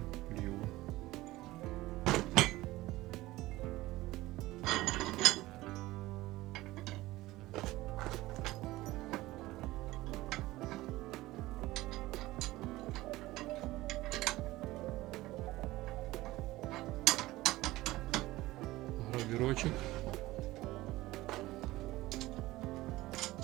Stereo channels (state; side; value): quieter; left; 18.0 dB